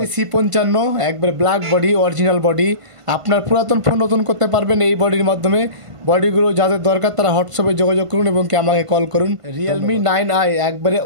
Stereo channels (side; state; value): left; late; 1.5 ms